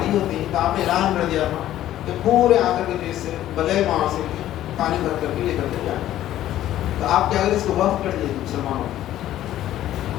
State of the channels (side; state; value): right; quieter; 13.0 dB